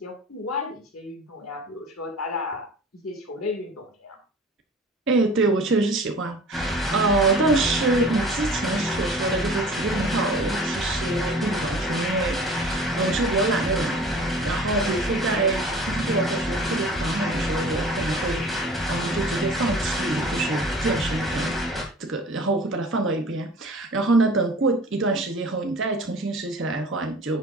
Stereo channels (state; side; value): normal; both; correlation 0.44